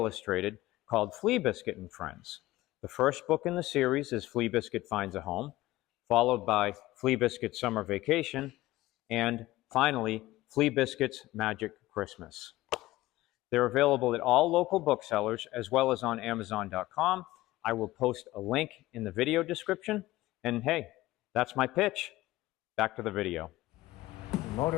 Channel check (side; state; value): right; quieter; 17.5 dB